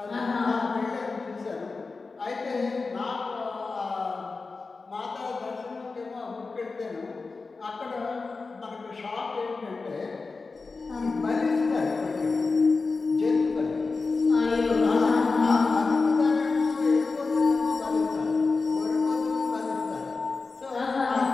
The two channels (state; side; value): quieter; right; 4.1 dB